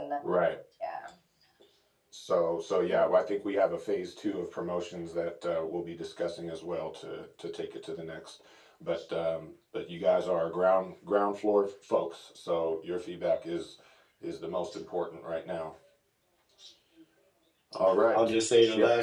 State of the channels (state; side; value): identical; both; correlation 1.00